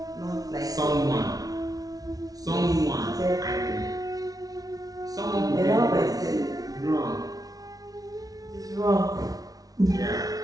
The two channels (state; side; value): late; left; 0.18 ms